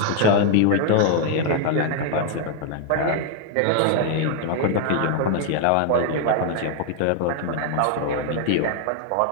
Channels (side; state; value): both; different; correlation 0.00